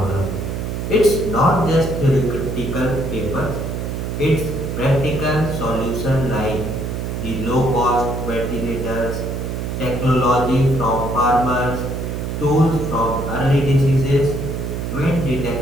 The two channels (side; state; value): right; noise; hum, 4 dB below the sound